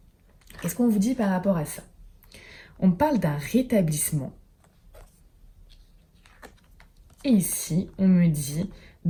qu'est-ce qu'on vous dit par rapport à ça? On parle d'un rétablissement. Et ici, on me dit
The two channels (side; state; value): both; identical; correlation 1.00